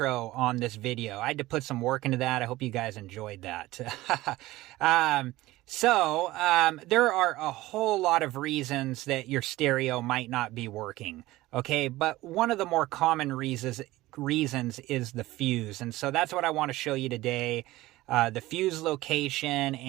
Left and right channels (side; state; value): left; quieter; 17.8 dB